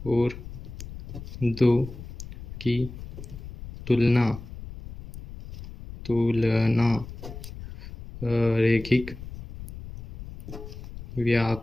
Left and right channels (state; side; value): noise; left; rumble, 12 dB below the sound